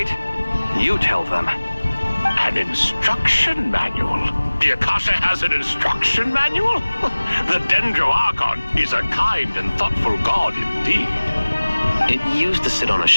You tell them. An instruction manual? The Akasha has an instruction manual? The Dendro Archon is a kind and thoughtful god indeed. It used to sit on a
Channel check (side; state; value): both; inverted; correlation -1.00